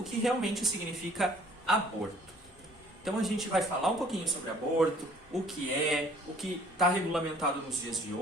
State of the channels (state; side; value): normal; both; correlation 0.56